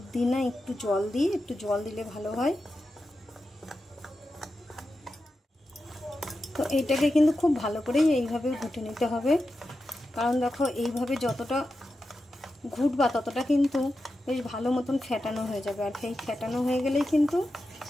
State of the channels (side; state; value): both; normal; correlation 0.90